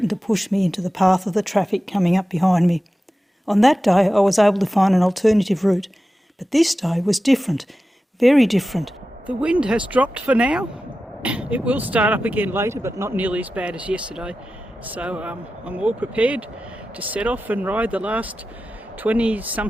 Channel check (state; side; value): normal; both; correlation 0.93